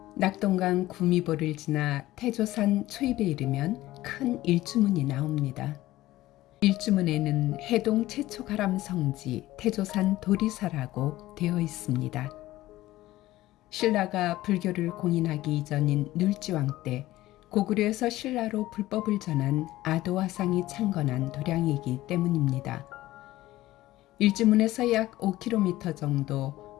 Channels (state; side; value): quieter; right; 16.4 dB